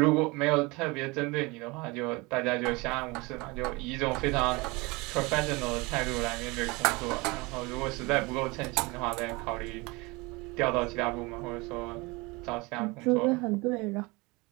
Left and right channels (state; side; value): quieter; left; 25.1 dB